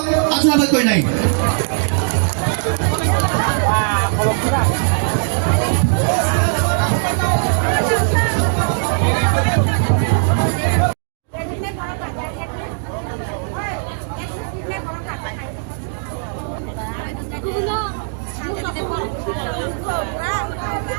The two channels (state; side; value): silent; left; digital silence